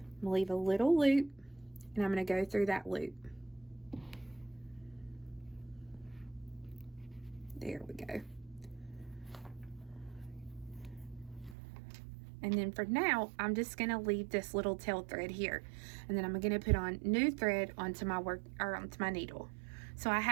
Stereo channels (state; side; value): drops out; left; at 11.6 s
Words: leave a little loop, and I'm going to go through that loop. There we go. And then for now, I'm just going to leave this little tail thread here, and then I'm going to put on new thread onto my onto my needle. So I